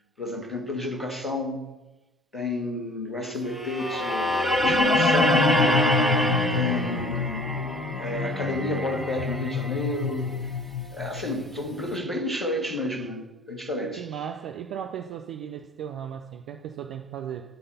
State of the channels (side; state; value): both; normal; correlation 0.50